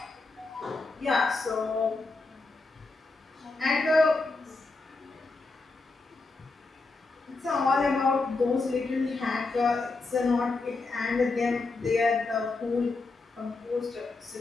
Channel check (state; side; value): quieter; right; 3.6 dB